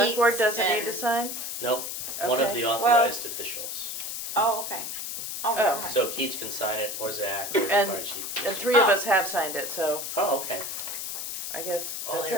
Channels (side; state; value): left; noise; hiss, 5 dB below the sound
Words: board Keats doesn't need and- to sign? No, one of Okay. the Well- authorized officials. Oh, okay. Oh, Oh. never mind. So Keats can sign it, or Zach, or the And- fire chief. And three of Oh. us have signed it, so Oh, okay. I guess Oh, that's